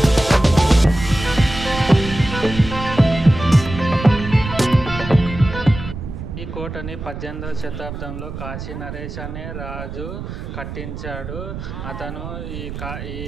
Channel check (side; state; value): right; noise; rumble, 9 dB below the sound